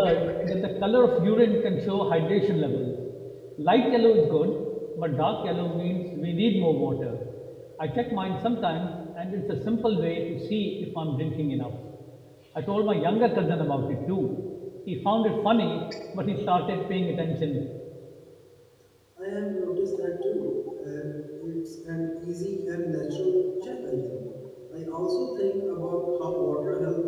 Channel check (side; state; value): both; identical; correlation 1.00